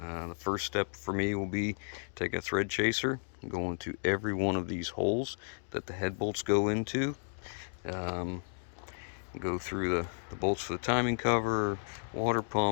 first step for me will be take a thread chaser and go into every one of these holes that the head bolts go into. Go through the bolts for the timing cover, water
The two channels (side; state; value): right; silent; digital silence